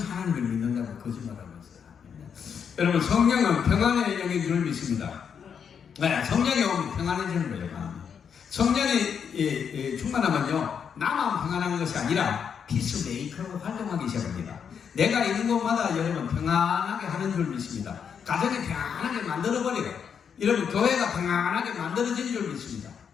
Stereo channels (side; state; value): right; quieter; 7.2 dB